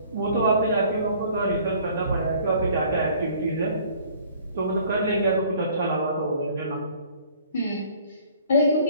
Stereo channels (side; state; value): both; inverted; correlation -0.54